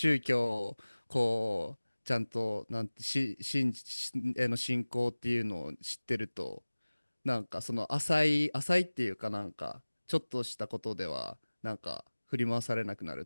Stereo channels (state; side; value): inverted; both; correlation -1.00